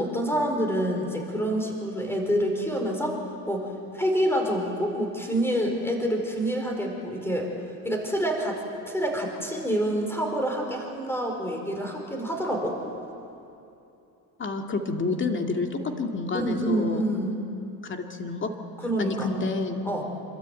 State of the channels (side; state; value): both; normal; correlation 0.57